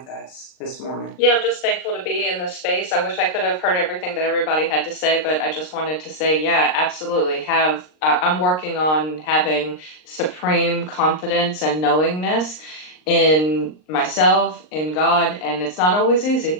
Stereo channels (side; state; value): right; late; 39 ms